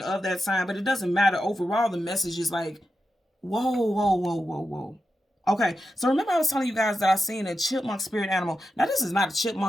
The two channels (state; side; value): normal; both; correlation 0.89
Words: of that sign, but it doesn't matter. Overall, the message is like, whoa, whoa, whoa, whoa, whoa. Okay, so remember I was telling you guys that I seen a chipmunk spirit animal. Now, this is not a